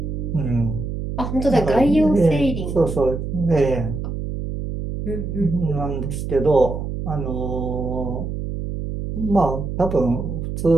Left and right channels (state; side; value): noise; right; hum, 5 dB below the sound